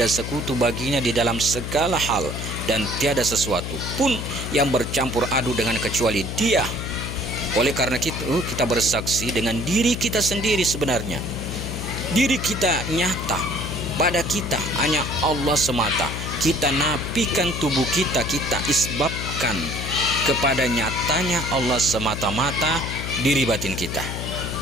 sekutu baginya di dalam segala hal, dan tiada sesuatu pun yang bercampur aduk dengan kecuali Dia. Oleh karena itu kita bersaksi dengan diri kita sendiri. Sebenarnya diri kita nyata, pada kita hanya Allah semata. Kita nafikan tubuh kita, kita isbabkan kepada nyatanya Allah semata-mata diri batin kita.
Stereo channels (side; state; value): left; noise; hum, 5 dB below the sound